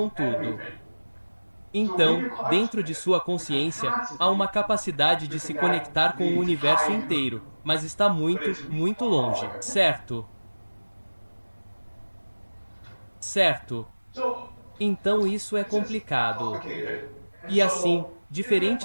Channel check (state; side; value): inverted; both; correlation -1.00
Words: tudo. Então, dentro de sua consciência, há uma capacidade de se conectar com o universo inteiro, mas está muito, muito longe, certo? Certo. Então isso é complicado. E assim,